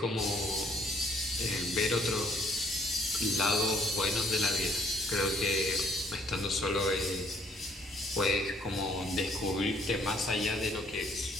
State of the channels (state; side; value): normal; both; correlation 0.63